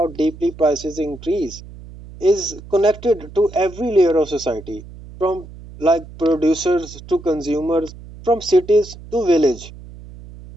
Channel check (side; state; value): right; noise; hum, 17 dB below the sound